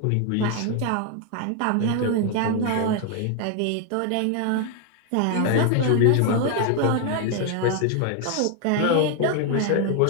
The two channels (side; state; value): both; different; correlation 0.00